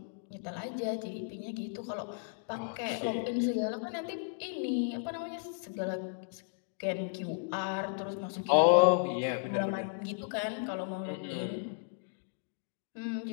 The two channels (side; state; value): right; silent; digital silence